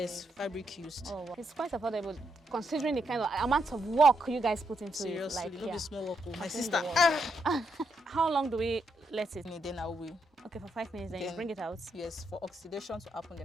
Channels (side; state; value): both; normal; correlation 0.80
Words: fabric used. Oh, wow. It's quite affordable considering the kind of amount of work you guys put into Seriously, it. Like, not be small work. My sister. How long do we let it? Then I will. Okay, for 5 minutes, then you bring it out. Yes, for oxidation to happen.